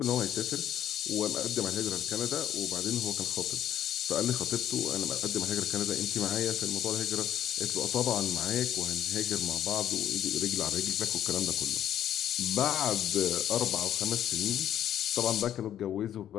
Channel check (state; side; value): quieter; right; 10.8 dB